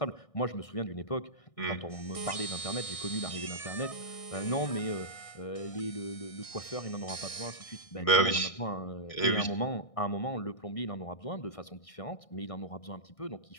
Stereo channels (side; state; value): right; late; 1.6 ms